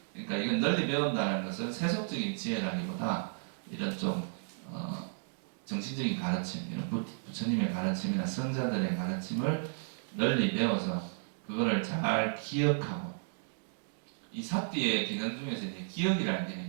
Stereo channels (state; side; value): silent; left; digital silence